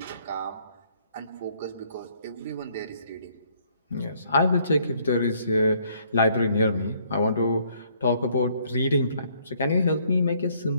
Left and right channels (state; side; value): inverted; both; correlation -0.65